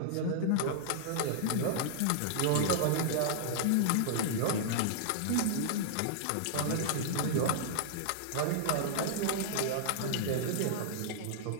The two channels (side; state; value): both; different; correlation -0.01